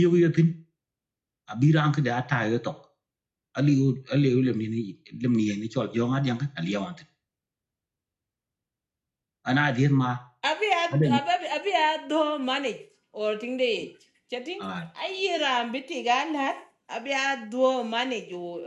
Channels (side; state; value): both; identical; correlation 1.00